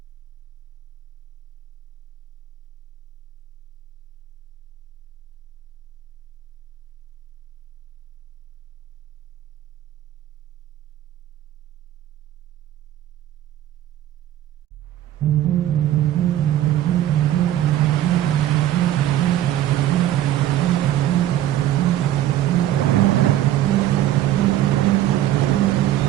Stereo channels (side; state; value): left; quieter; 12.7 dB